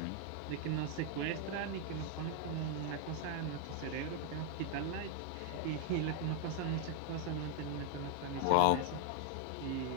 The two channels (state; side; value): different; both; correlation 0.00